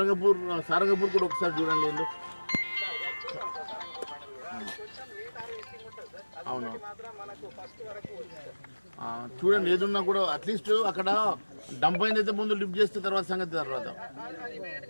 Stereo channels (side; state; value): both; inverted; correlation -1.00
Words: కూడా ఒకసారి చూడండి. ఎందుకు అవును చూడండి, ఏదున్నా కూడా అట్లీస్ట్ అక్కడ డంప్ అయిందైతే ముందు లిఫ్ట్ చేస్తే తర్వాత సంగతి తర్వాత.